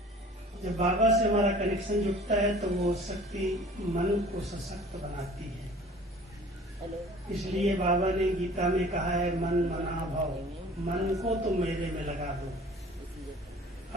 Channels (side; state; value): both; normal; correlation 0.47